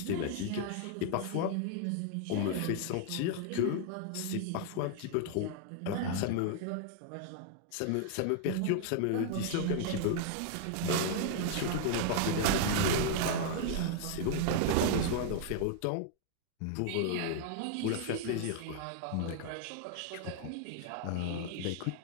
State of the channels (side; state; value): both; different; correlation 0.00